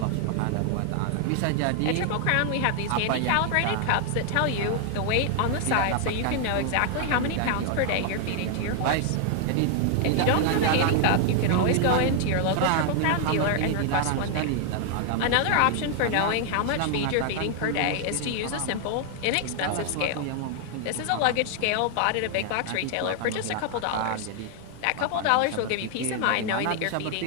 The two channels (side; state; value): both; different; correlation 0.00